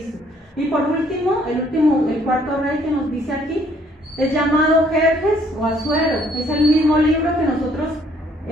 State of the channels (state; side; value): normal; both; correlation 0.63